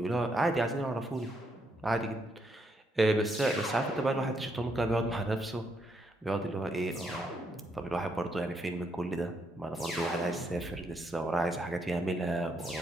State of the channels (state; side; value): normal; both; correlation 0.76